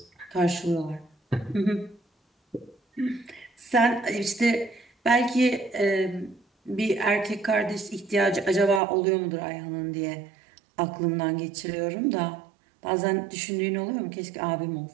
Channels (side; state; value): left; drops out; at 8.8 s